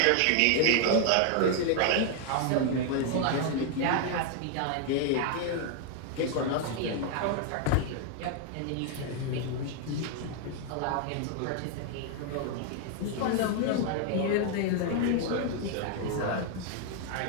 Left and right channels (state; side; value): different; both; correlation 0.00